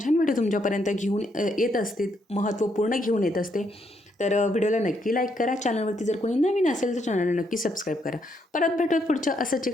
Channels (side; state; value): both; normal; correlation 0.75